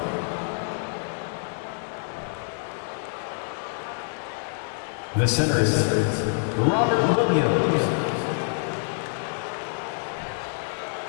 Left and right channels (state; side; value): silent; right; 61 dB below the other